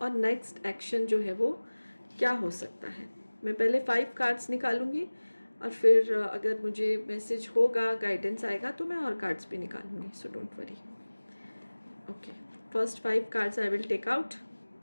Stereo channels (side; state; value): both; inverted; correlation -1.00